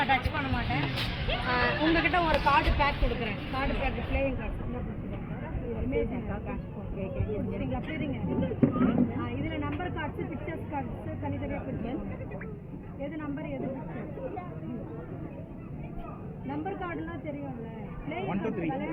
டச் பண்ண மாட்டேன். உங்ககிட்ட ஒரு கார்டு பேக் கொடுக்குறேன். கார்டு பேக் பிளேயிங் கார்டு சரிங்களா? சரிங்க. இதில் நம்பர் கார்ட்ஸு, பிக்சர்ஸ் கார்ட்ஸு தனித்தனியாக பிரிச்சேன். எது நம்பர் எது பிக்சர்? நம்பர் கார்டுலாம் தெரியும்ல, பிளேயிங் கார்டு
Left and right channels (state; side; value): identical; both; correlation 1.00